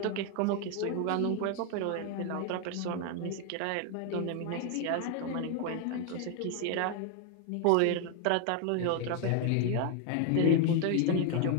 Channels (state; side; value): different; both; correlation 0.00